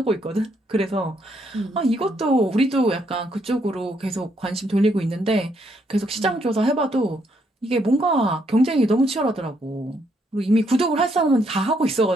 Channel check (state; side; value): normal; both; correlation 0.73